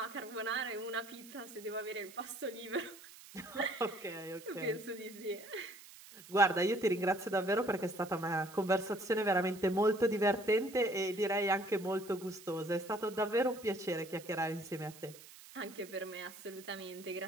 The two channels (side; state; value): right; noise; hiss, 18 dB below the sound